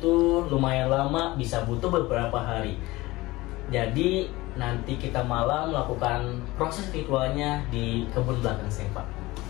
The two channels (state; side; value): quieter; right; 20.0 dB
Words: lumayan lama, bisa butuh beberapa hari. Jadi nanti kita malam melakukan proses ritualnya di kebun belakang saya Pak.